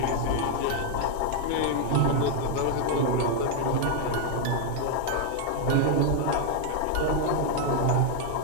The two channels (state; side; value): different; both; correlation 0.00